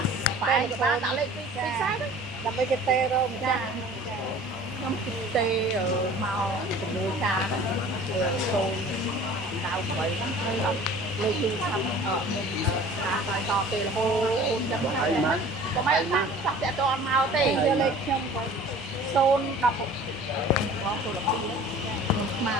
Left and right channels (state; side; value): normal; both; correlation 0.46